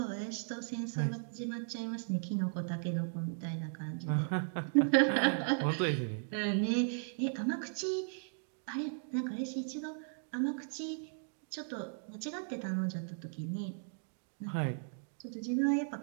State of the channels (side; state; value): left; silent; digital silence